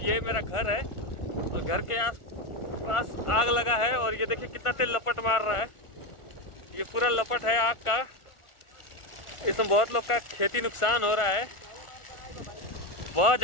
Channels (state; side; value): late; right; 1.4 ms